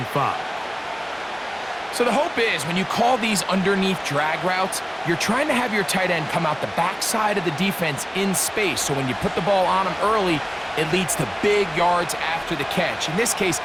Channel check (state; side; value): identical; both; correlation 1.00